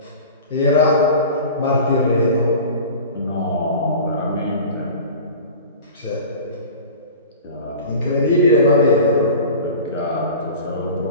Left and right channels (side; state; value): both; inverted; correlation -0.38